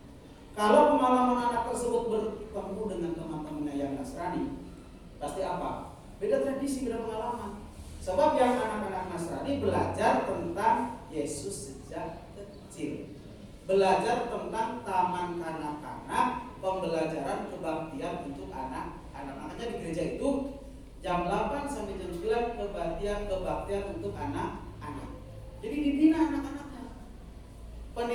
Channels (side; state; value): both; identical; correlation 1.00